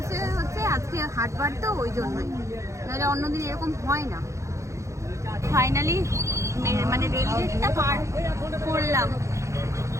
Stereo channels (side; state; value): left; late; 0.14 ms